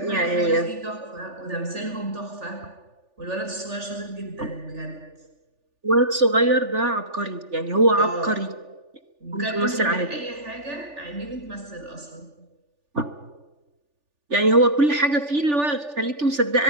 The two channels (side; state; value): left; late; 3.4 ms